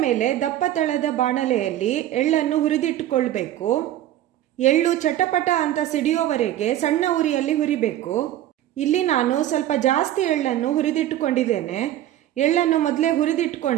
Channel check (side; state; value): left; quieter; 12.8 dB